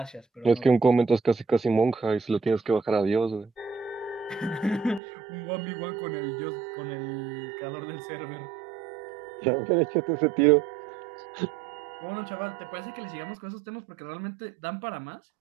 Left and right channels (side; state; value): left; drops out; at 5.0 s